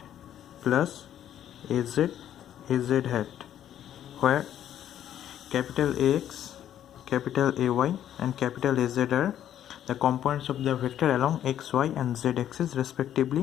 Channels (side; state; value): right; quieter; 10.8 dB